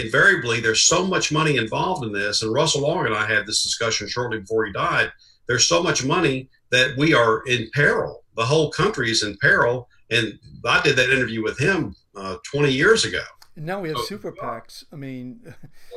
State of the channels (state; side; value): identical; both; correlation 1.00